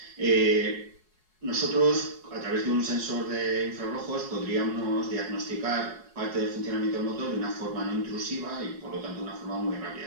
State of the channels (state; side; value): late; left; 4.7 ms